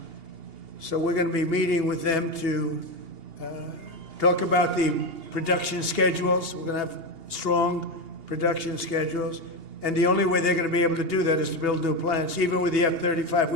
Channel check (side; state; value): left; late; 2.8 ms